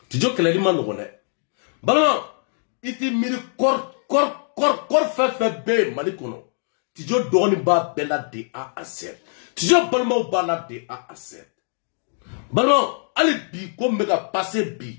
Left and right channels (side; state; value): right; silent; 58 dB below the other